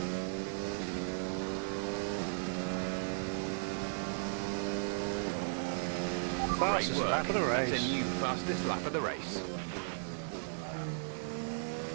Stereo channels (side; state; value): left; silent; digital silence